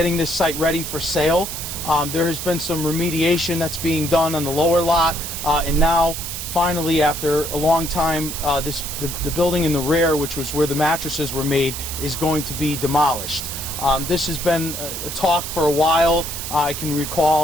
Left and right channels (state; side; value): noise; right; hiss, 6 dB below the sound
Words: this site ready for sale. There has been some remediation that's being done on the lower lot, and now finally, after a long time, the building in the rear, which was where the mattresses were made, is going to be demolished. This has been a talk for a while. I can